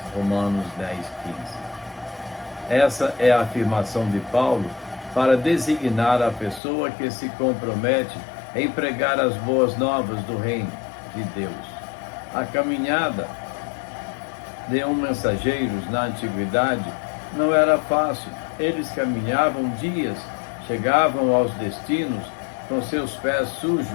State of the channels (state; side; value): drops out; right; at 6.6 s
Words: Romanos 10:15. Essa é a afirmação de Paulo para designar a pessoa que se compromete em pregar as boas novas do reino de Deus. A caminhada de mensageiros na antiguidade não era fácil. Eles caminhavam dias, chegavam aos destinos com seus pés